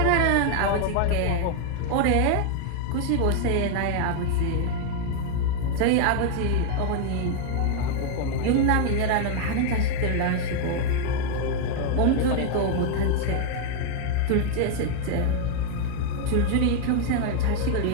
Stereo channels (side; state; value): both; different; correlation 0.00